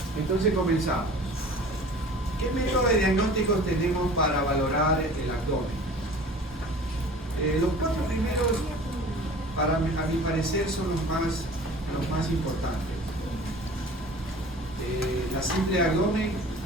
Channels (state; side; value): normal; both; correlation 0.43